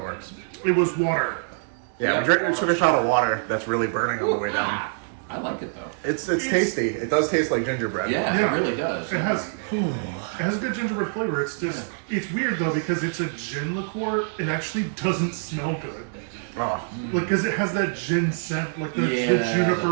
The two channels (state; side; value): silent; left; digital silence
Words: works. It was water. Yeah, Yeah. I took a shot of water that's really burning on the way down. Ah, I like it though. It's tasty. It does taste like gingerbread. Yeah, Yeah. it really does. It has good gingerbread flavor. It's just it's weird though because it's a gin liqueur. It actually doesn't smell good. Oh. Like because it has that gin scent, like the Yeah,